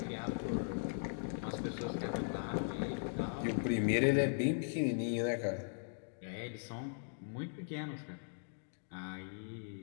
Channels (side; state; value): right; silent; digital silence